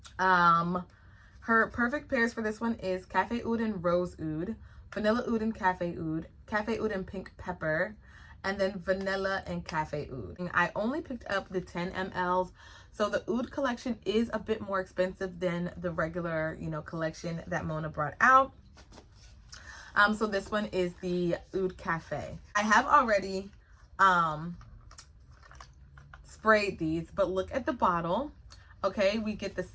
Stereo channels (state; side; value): identical; both; correlation 1.00